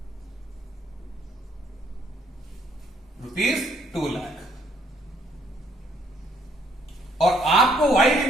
रुपीज 2 लाख, और आपको वाई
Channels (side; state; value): both; normal; correlation 0.66